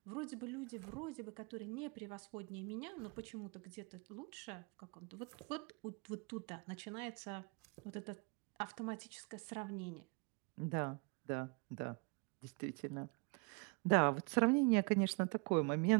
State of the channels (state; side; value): quieter; left; 31.7 dB